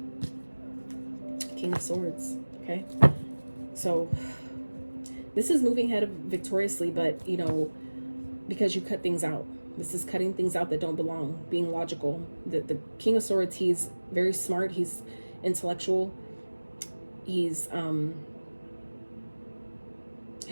King of Swords. Okay, so this is moving ahead victoriously, but, you know, because you cut things out. This is cutting things out that don't belong, being logical. The King of Swords, he's very smart, he's intellectual, he's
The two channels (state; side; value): inverted; both; correlation -1.00